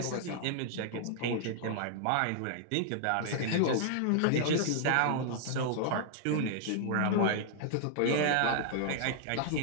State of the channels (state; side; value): different; both; correlation -0.01